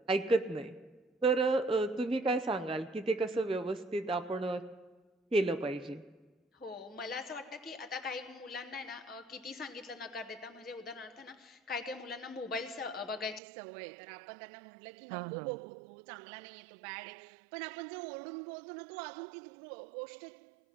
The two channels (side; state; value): left; drops out; at 13.4 s